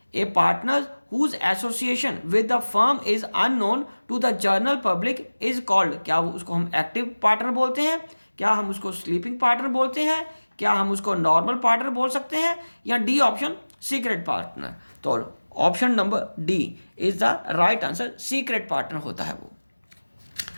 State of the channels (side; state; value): both; inverted; correlation -1.00